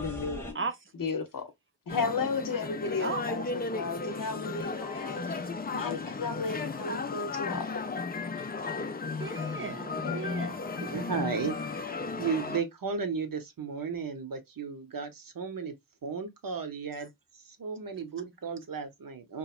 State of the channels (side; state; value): both; normal; correlation -0.07